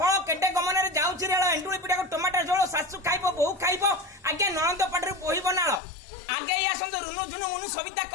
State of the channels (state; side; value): drops out; right; at 5.8 s